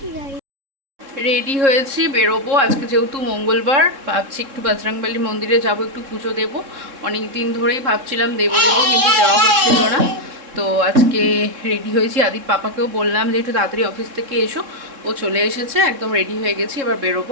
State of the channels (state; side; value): late; left; 3.7 ms